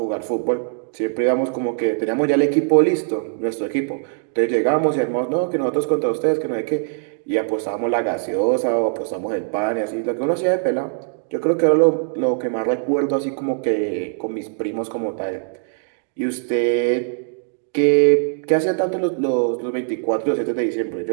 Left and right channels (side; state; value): left; silent; digital silence